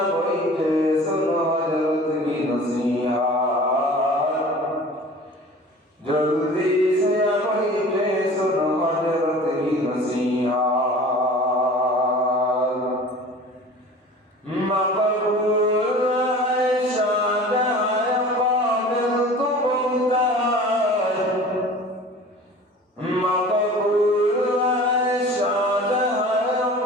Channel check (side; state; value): both; normal; correlation 0.42